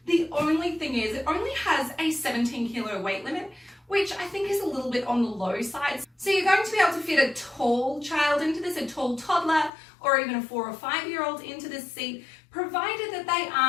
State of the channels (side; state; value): right; drops out; at 9.7 s